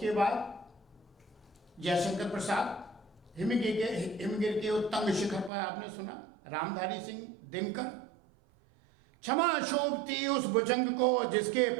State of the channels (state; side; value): drops out; left; at 5.5 s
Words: बाद जयशंकर प्रसाद, हिमगिर के उत्तंग शिखर पर आपने सुना, रामधारी सिंह दिनकर, क्षमा शोभती उस भुजंग को जिसके